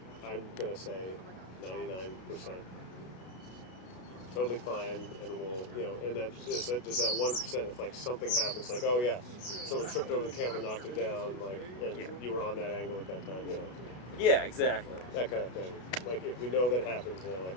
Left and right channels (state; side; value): late; right; 33 ms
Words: I'm gonna say, 99% totally fine, and we'll, you know, and that just that 1%. If like something happens, like oh yeah, someone tripped over the camera, knocked it down, like, and Yeah. you were on that angle at that time, you know, Yeah, exactly. that kind of thing. Like if we know that happens, then like